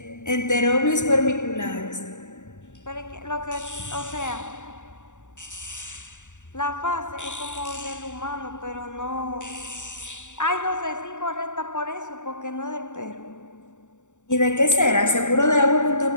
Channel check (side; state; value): right; late; 0.85 ms